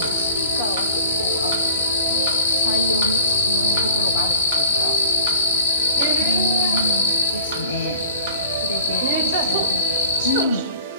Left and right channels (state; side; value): inverted; both; correlation -0.46